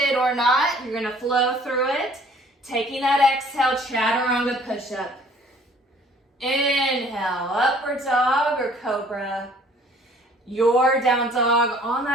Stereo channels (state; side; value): normal; both; correlation 0.56